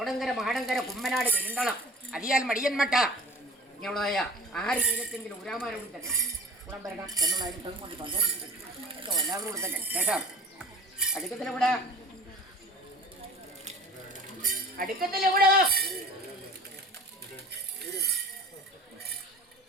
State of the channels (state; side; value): normal; both; correlation 0.43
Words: മാടങ്കര കുമ്മനാട് പെരുന്തളം അതിയാൽ മടിയൻമട്ട ഇങ്ങനെയുള്ളതായ ആര് ജീവിതത്തെങ്കിലും ഉരാമാരോടും തന്നെ കുളം വരണം എന്നുള്ളതിന് കൊണ്ട് സന്തോഷിച്ചു എല്ലാവരോടും തന്നെ. ശേഷം അടുക്കത്തിലെവിടെ